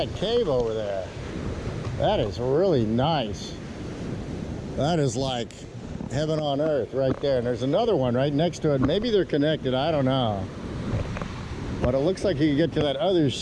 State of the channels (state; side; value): identical; both; correlation 1.00